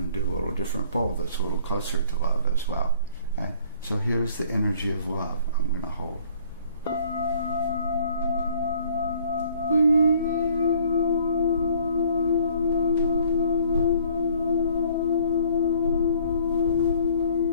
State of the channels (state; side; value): inverted; both; correlation -0.58